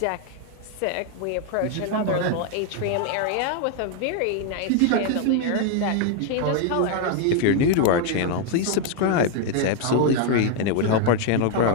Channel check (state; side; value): different; both; correlation 0.01